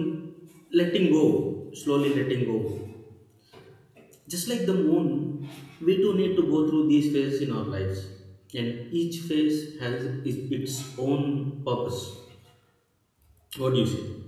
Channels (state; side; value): identical; both; correlation 1.00